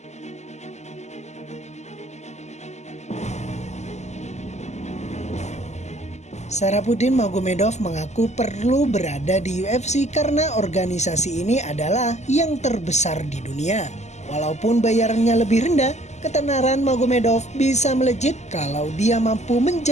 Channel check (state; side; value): late; right; 0.33 ms